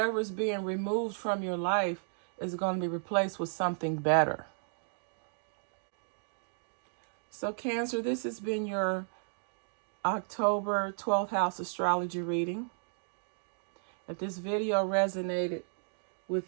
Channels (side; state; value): left; silent; digital silence